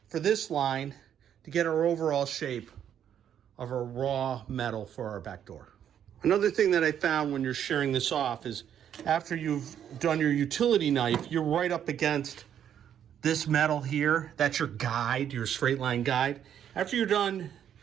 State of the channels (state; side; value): quieter; left; 9.5 dB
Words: for this line to get our overall shape of our raw metal for our back door. Another thing that I found when you're shearing this off is after you've done your utility knife, you're right up against this metal here. That's your guide, your straight line guide. After you're done